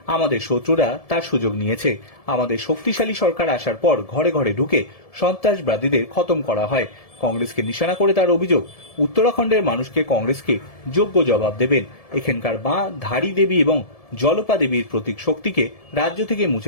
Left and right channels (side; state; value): right; late; 1.7 ms